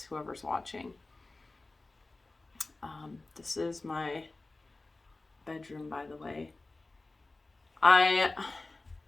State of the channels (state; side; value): quieter; right; 3.2 dB